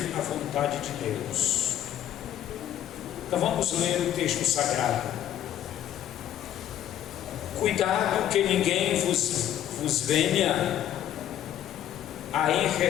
a vontade de Deus. Então vamos ler o texto sagrado. Cuidado que ninguém vos venha a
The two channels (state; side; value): quieter; right; 11.3 dB